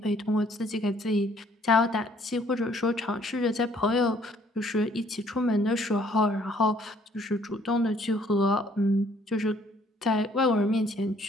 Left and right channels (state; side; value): normal; both; correlation 0.62